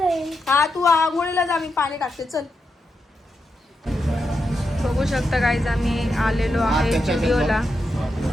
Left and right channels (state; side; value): normal; both; correlation 0.85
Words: आहे. हा, तू आंघोळीला जा, मी पाणी टाकते. चल. बघू शकता गाईज, आम्ही आलेलो आहे स्टुडिओला.